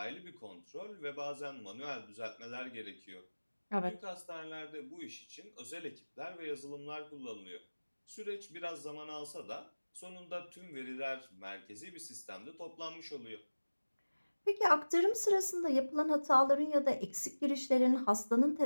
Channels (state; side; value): inverted; both; correlation -1.00